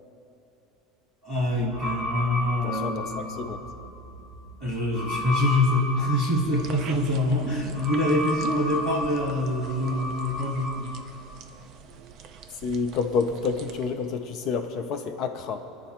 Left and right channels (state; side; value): normal; both; correlation 0.35